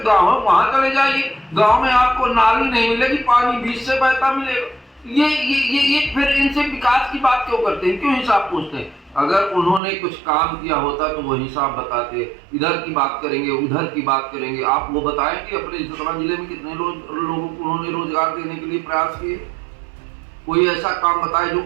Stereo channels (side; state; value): left; drops out; at 9.8 s